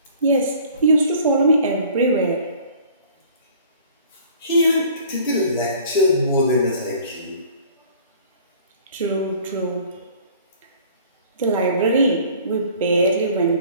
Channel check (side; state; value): both; inverted; correlation -0.50